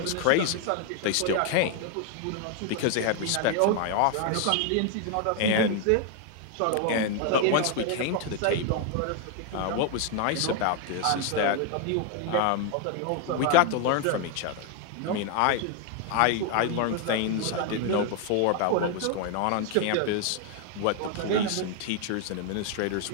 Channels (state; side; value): different; both; correlation 0.00